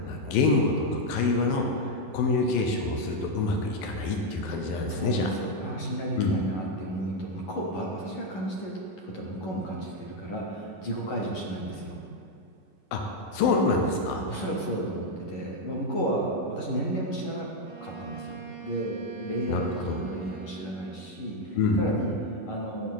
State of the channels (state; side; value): late; right; 11 ms